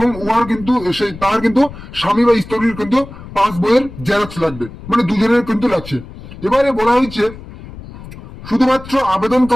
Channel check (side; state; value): left; noise; rumble, 15 dB below the sound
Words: উহার কিন্তু তার কিন্তু স্বামী বা স্ত্রীর কিন্তু পাস বইয়ের জেরক্স লাগবে, মানে দুজনের কিন্তু লাগছে। এবারে বলা হয়েছে শুধুমাত্র